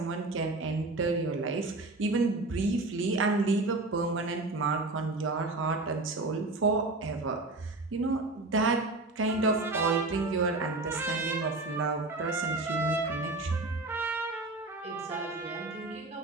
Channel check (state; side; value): quieter; left; 3.1 dB